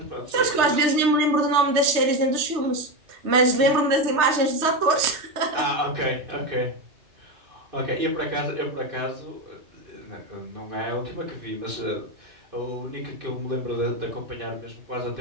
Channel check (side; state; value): left; late; 3.2 ms